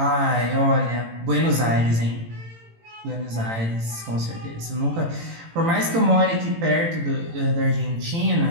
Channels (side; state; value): left; late; 18 ms